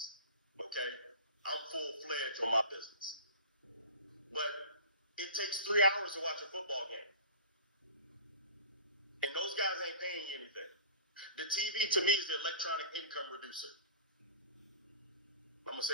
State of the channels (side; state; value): both; inverted; correlation -0.37